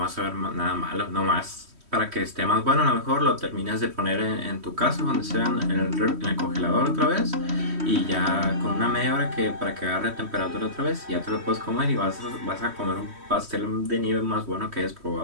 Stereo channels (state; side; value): late; left; 3.1 ms